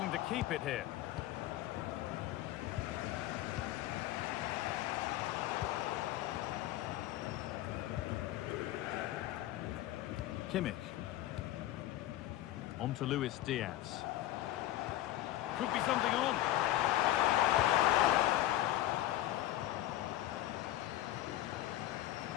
to keep it here. Kimmich. On to Luis Diaz. Could be something on.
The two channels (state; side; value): quieter; right; 14.6 dB